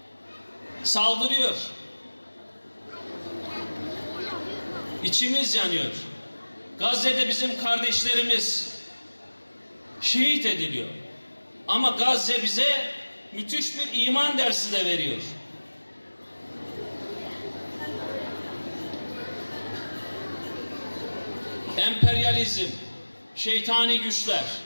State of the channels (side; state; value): both; inverted; correlation -1.00